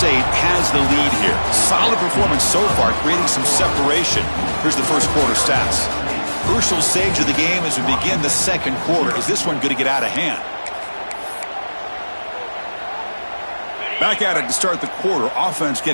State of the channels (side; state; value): both; inverted; correlation -1.00